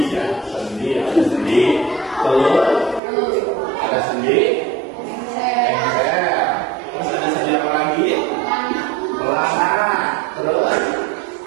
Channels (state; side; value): drops out; left; at 3.0 s